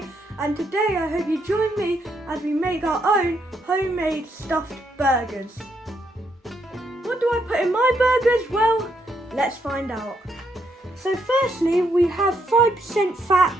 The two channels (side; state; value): both; normal; correlation 0.76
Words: And today I hope you join me as we make our own homemade stuffed burgers. What do I put in my burgers? Well, let's find out. So firstly, we have 5% fat